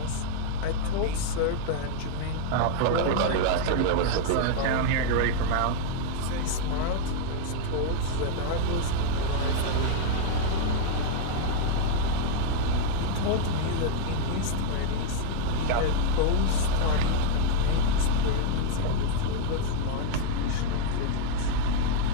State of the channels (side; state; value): both; different; correlation -0.01